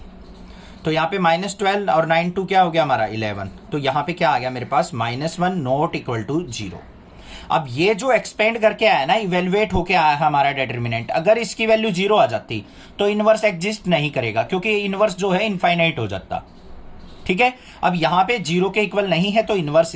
तो यहाँ पे -12 और 9 2 क्या हो गया हमारा 11, तो यहाँ पे क्या आ गया मेरे पास -1 नॉट इक्वल टू 0। अब ये जो एक्सपेंड करके आया ना, इवेल्युएट होके आया है हमारा डिटर्मिनेंट, अगर इसकी वैल्यू 0 आ जाती तो इनवर्स एग्जिस्ट नहीं करेगा, क्योंकि इनवर्स जो है इनफाइनाइट हो जाता, ठीक है। अब यहाँ पे 0 के इक्वल नहीं है तो इनवर्स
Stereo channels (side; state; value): both; identical; correlation 1.00